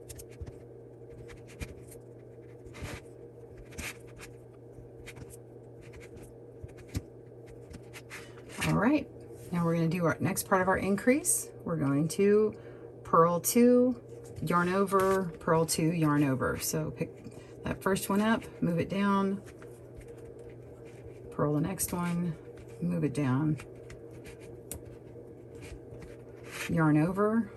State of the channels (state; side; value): identical; both; correlation 1.00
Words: All right, now we're going to do our next part of our increase. We're going to purl 2, yarn over, purl 2, yarn over. So pick that first one up, move it down, purl the next one, move it down, yarn over,